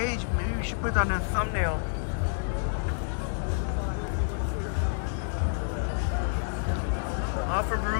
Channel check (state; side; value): silent; right; digital silence